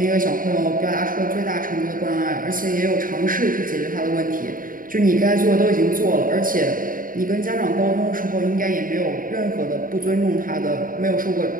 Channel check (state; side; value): late; left; 0.40 ms